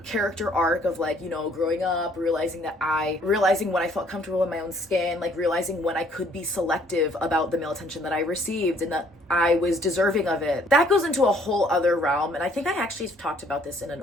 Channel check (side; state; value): both; normal; correlation 0.62